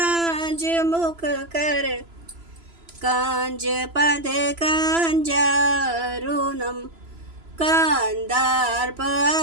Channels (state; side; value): late; left; 3.0 ms